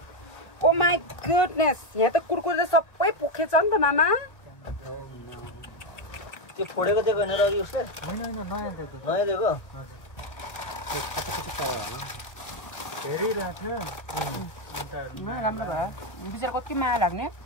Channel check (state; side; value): late; right; 1.0 ms